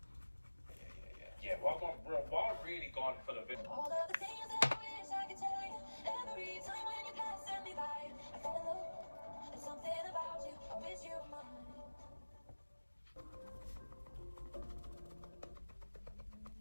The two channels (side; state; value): both; inverted; correlation -1.00